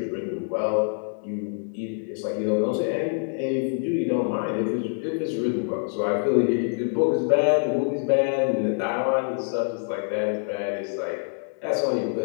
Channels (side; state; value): right; silent; 61 dB below the other